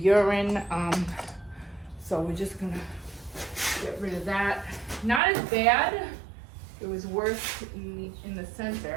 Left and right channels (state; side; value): drops out; left; at 5.2 s